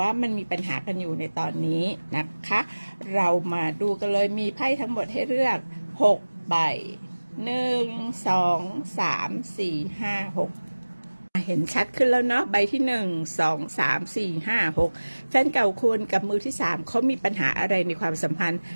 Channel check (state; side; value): inverted; both; correlation -1.00